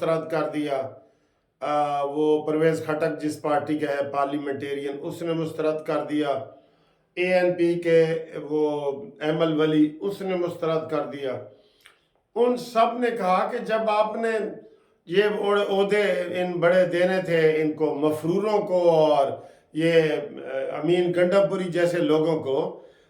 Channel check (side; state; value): both; identical; correlation 1.00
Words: कर दिया, वो परवेज़ खटक जिस पार्टी का है पार्लियामेंटेरियन उसने मुस्तरद कर दिया, ANP के वो एमल वली उसने मुस्तरद कर दिया। उन सब ने कहा कि जब आपने ये ओहदे इन बड़े देने थे इनको मफरूरों को और ये अमीन गंडापुरी जैसे लोगों को,